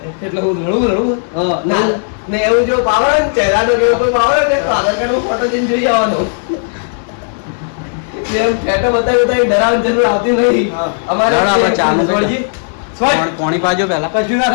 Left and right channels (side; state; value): right; silent; digital silence